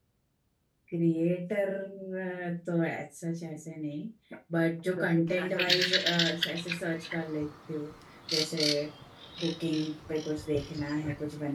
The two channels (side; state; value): both; identical; correlation 1.00